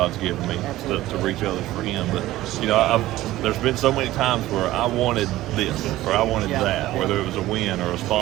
given me to reach others for Him. But there's been so many times where I wanted this or I wanted that, whether it was a win or a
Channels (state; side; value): quieter; left; 16.0 dB